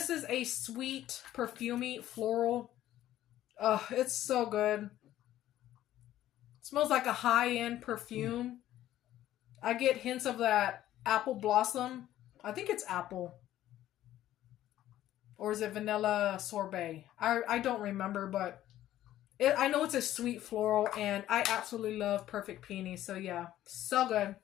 is a sweet, perfumey, floral. It's so good. It smells like a high-end perfume. I get hints of that apple blossom. I think it's apple. Or is it vanilla sorbet? I don't remember, but I know it's a sweet floral. And I absolutely love Perfect Peony. So yeah, so good.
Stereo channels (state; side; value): quieter; right; 13.3 dB